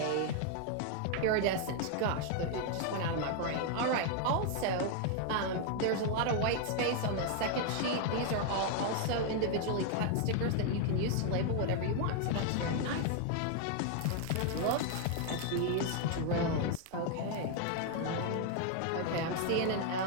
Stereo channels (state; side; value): different; both; correlation 0.00